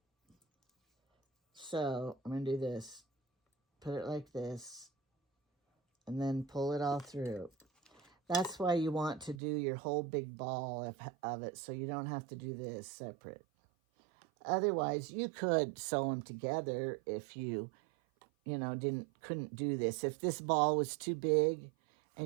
So, I'm going to do this. Put it like this. And then pull it all through. That's why you want to do your whole big ball of it, so you don't have to do this separate. Otherwise, you could sew them together if you couldn't do this. If this ball was too big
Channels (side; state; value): left; drops out; at 9.3 s